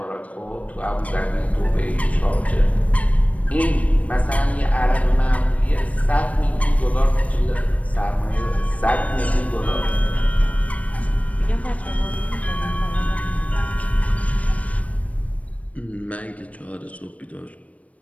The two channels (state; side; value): late; right; 0.067 ms